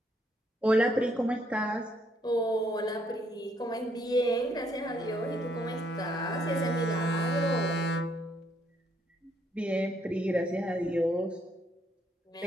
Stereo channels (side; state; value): both; normal; correlation 0.71